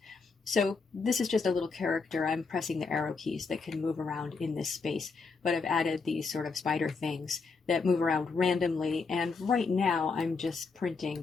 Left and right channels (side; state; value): right; quieter; 4.6 dB